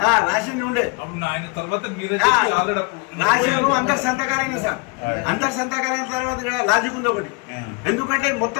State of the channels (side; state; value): right; quieter; 30.2 dB